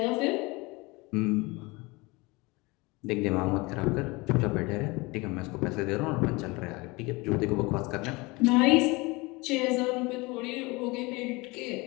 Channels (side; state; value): right; quieter; 24.6 dB